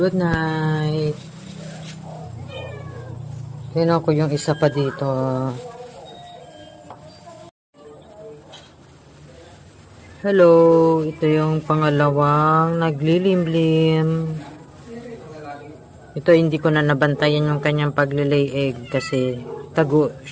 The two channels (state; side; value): identical; both; correlation 1.00